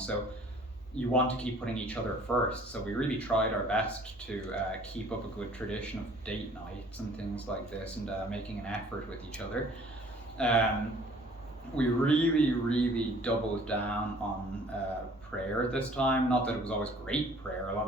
you want to keep putting each other first. So we really tried our best to keep up a good tradition of date nights and things like this, and making an effort with each other. We really doubled down on prayer this time. Not that it was always great prayer, a lot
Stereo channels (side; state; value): both; normal; correlation 0.54